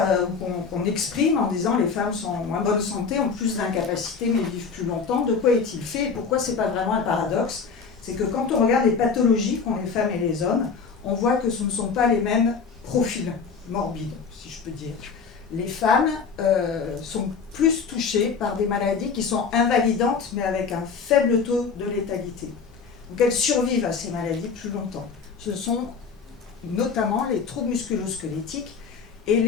qu'on exprime en disant les femmes sont en moins bonne santé, ont plus d'incapacités mais vivent plus longtemps, de quoi est-il fait et pourquoi c'est pas vraiment un paradoxe? C'est que quand on regarde les pathologies qu'ont les femmes et les hommes, on voit que ce ne sont pas les mêmes profils morbides, si je peux dire. Les femmes sont plus touchées par des maladies qui sont invalidantes, mais avec un faible taux de létalité. Donc elles survivent à ces maladies plus longtemps. Ce sont notamment les troubles musculo-squelettiques et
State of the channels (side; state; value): right; quieter; 5.5 dB